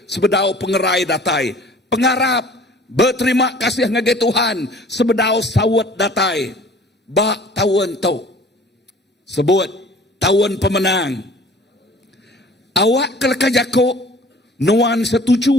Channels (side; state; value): both; normal; correlation 0.49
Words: sebedau pengerai datai. Pengarap berterima kasih ngagai Tuhan sebedau sawat datai. Bak tahun tu. Sebut tahun pemenang. Awak keleka jakuk nuan